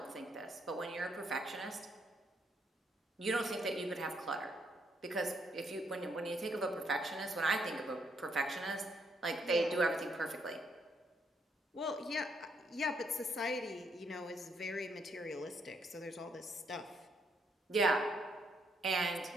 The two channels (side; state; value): both; normal; correlation 0.74